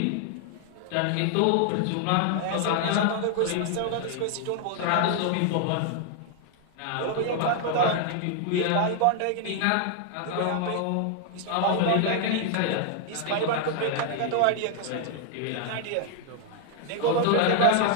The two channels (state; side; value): different; both; correlation 0.00